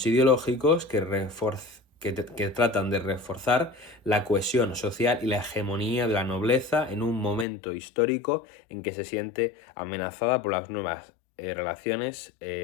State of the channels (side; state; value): right; drops out; at 7.5 s